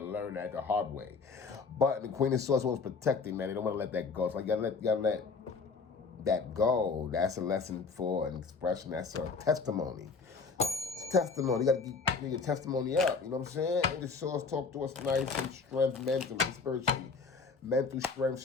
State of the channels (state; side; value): quieter; right; 4.8 dB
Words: learn that the hard way. But the Queen of Swords was protecting, man. They don't want to let that go. So you gotta let that go. That's a lesson for an expression. That's a testimony. Testimony. You got to get your testimony up. You know what I'm saying? And the Swords talk to us nice and strength mentally, spiritually. Mental strength